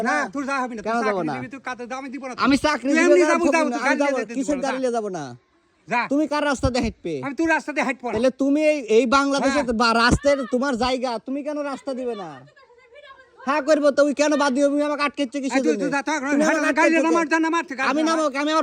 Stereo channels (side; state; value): both; identical; correlation 1.00